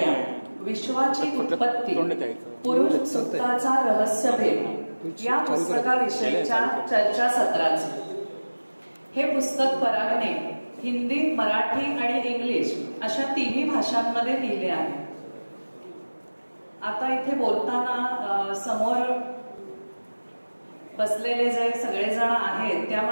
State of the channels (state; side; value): inverted; both; correlation -1.00